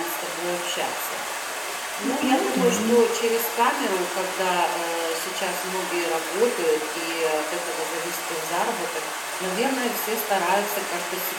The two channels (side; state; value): both; identical; correlation 1.00